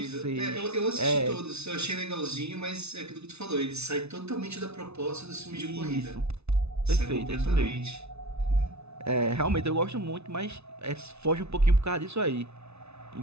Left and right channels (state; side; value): late; left; 0.81 ms